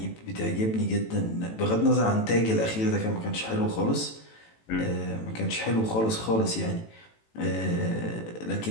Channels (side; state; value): right; late; 18 ms